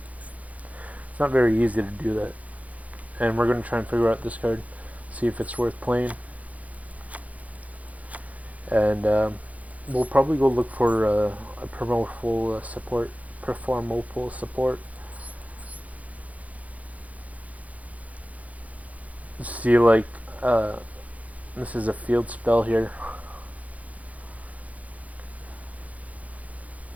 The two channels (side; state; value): left; late; 0.070 ms